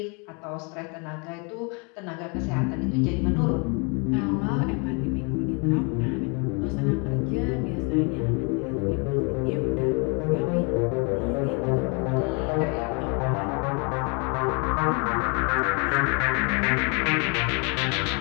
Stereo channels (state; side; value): quieter; right; 33.6 dB